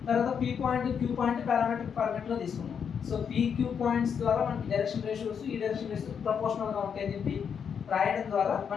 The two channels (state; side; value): quieter; right; 7.2 dB